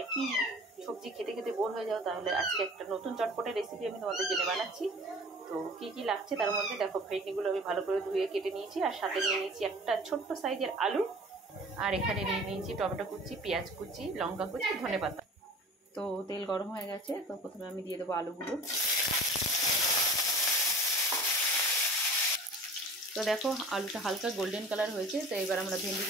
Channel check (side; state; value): both; normal; correlation 0.43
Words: একই সবজি খেতে খেতে বোর হয়ে যাও তাহলে আজকে একটা নতুন চটপটে রেসিপি আমি তোমাদের জন্য বানাচ্ছি। তো কি কি লাগছে তার মধ্যে দেখো, ভেন্ডিগুলো আমি ভালো করে ধুয়ে কেটে নিয়েছি, আর সাথে নিয়ে নিয়েছি একটা ছোট্ট সাইজের আলু, আর এখানে নিয়ে নিয়েছি টমেটো কুচি, পেঁয়াজ কুচি, লঙ্কা কুচি, ধনেপাতা। তো তেল গরম হয়ে গেছে, তো প্রথমে আমি দিয়ে দেবো আলুগুলো। তো দেখো আলুটা হালকা গোল্ডেন কালার হয়েছে, তো এবার আমরা